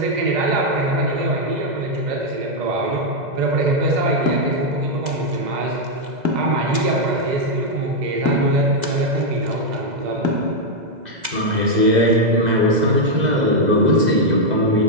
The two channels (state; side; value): late; left; 2.0 ms